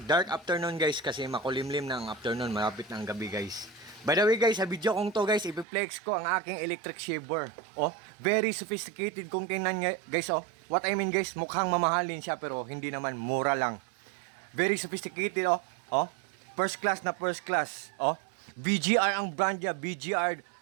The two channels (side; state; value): left; drops out; at 5.7 s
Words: Dark afternoon guys kasi makulimlim na ang afternoon, malapit na ang gabi guys. By the way guys, sa video kong to guys, ipiplex ko ang aking electric shaver. Oh, very sophisticated kung tingnan nyo guys. Oh, what I mean guys, mukhang mamahalin siya pero hindi naman, mura lang. Very sophisticated oh. Oh, first class na first class. Oh, BGR ang brand niya, BGR